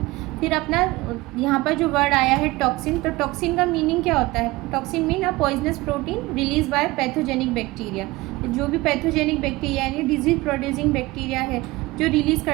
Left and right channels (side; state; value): left; quieter; 20.7 dB